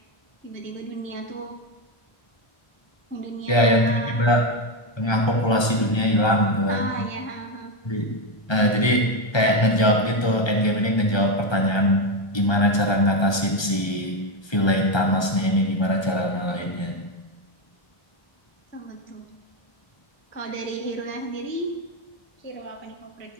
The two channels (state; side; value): late; right; 1.3 ms